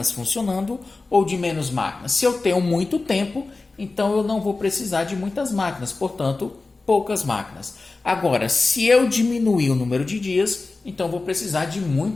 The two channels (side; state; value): right; quieter; 3.6 dB